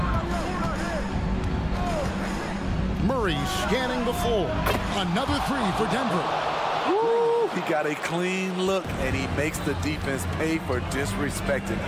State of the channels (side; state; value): both; identical; correlation 1.00